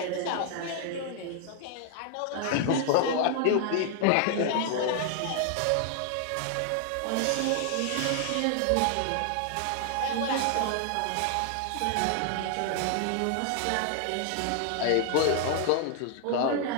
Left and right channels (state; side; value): different; both; correlation 0.00